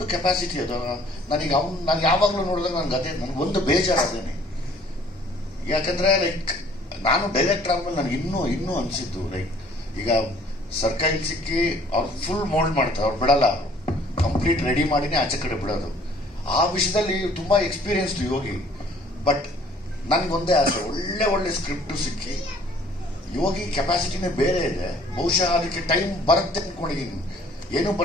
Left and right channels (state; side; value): normal; both; correlation 0.56